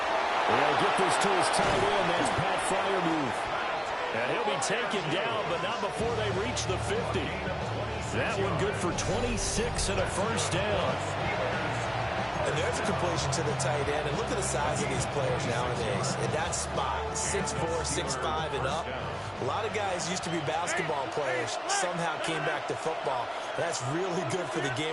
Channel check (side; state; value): both; identical; correlation 1.00